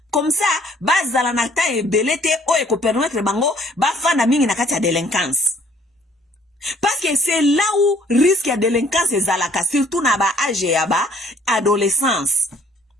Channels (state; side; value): normal; both; correlation 0.60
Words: comme ça bazala nakata ebelete o eko permettre bango ba fana mingi nakata ya délinquance. Parce que c'est là où risque ya délinquance ezalaka, surtout na ba âge ya ba adolescence.